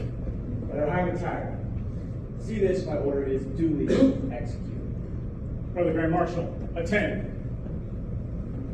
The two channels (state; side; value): identical; both; correlation 1.00